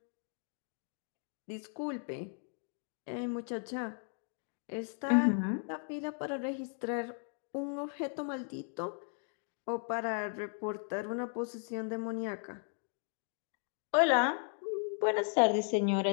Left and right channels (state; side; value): silent; right; 54 dB below the other